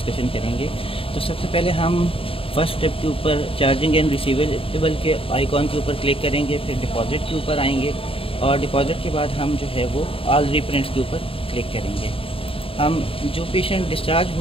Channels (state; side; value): late; right; 0.27 ms